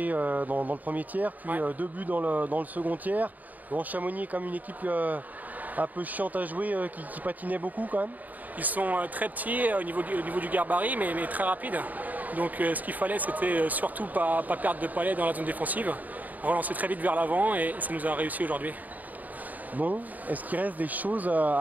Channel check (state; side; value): late; left; 0.080 ms